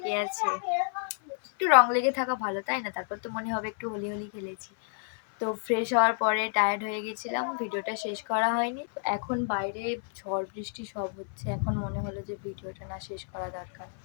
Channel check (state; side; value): silent; right; 58 dB below the other